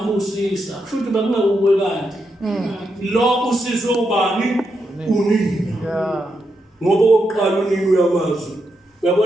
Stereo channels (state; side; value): normal; both; correlation 0.83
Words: futhi bekungekuwe kanti. Lo usizwe ubani unina. Ngoba oqala unina uyamazwi.